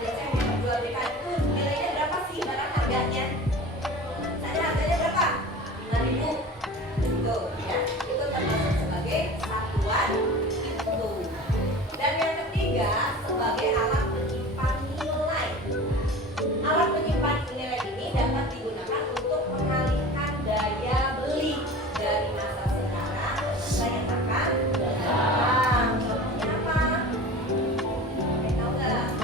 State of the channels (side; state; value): both; normal; correlation 0.37